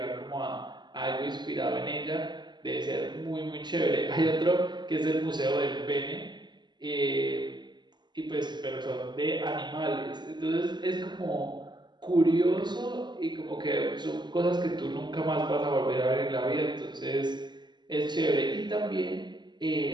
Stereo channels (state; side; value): late; left; 0.21 ms